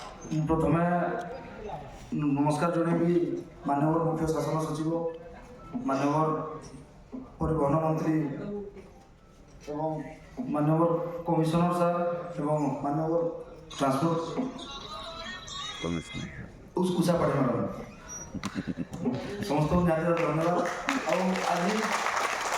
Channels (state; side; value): identical; both; correlation 1.00